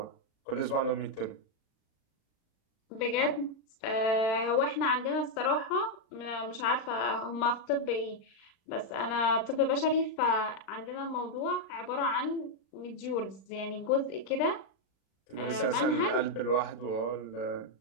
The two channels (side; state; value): right; late; 36 ms